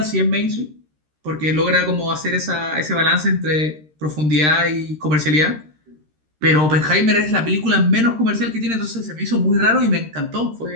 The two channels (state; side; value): late; left; 13 ms